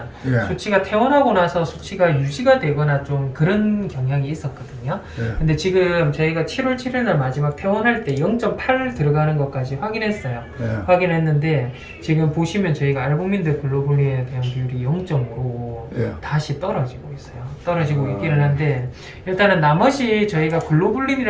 예. 수치가 퇴원하고 나서 수치가 유지가 되거나 좀 그런 경향이 있었거든요. 예. 근데 지금 저희가 7월 7일 날 마지막 퇴원할 때 0.8 들어가는 것까지 확인했어요. 예. 확인했는데 지금 보시면 저희가 알부민들 글로불린에 대한 비율이 0.5로 예. 다시 떨어지고 있어요. 떨어지고 아. 있기는 한데 일단은 나머지 저희가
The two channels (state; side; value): identical; both; correlation 1.00